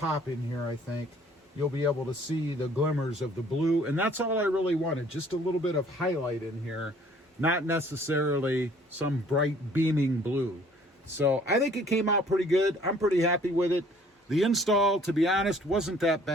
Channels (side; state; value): both; normal; correlation 0.57